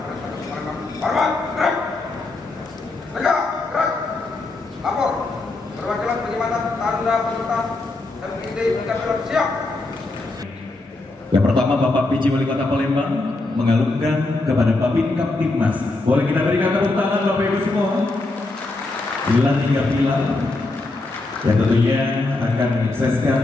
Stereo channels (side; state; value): right; quieter; 3.1 dB